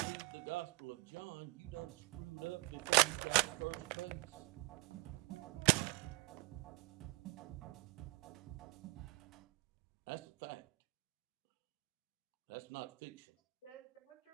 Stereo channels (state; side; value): quieter; left; 25.5 dB